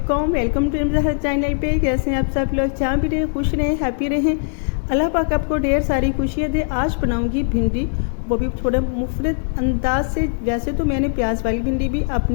वेलकम टू ज़हर चैनल पे। कैसे हैं आप सब लोग? जहाँ भी रहें खुश रहें, हैप्पी रहें। अल्लाह पाक आपको ढेर सारी खुशियाँ दे। आज बनाऊंगी भिंडी, वो भी थोड़ा मुफरत अंदाज से। वैसे तो मैंने प्याज वाली भिंडी भी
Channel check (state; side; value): silent; right; 66 dB below the other